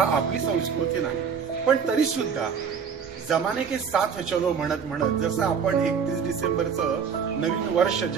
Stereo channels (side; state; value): left; quieter; 6.6 dB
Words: आपली संस्कृती नाही, पण तरी सुद्धा जमाने के साथ चलो म्हणत म्हणत जसं आपण 31 डिसेंबरचं नवीन वर्ष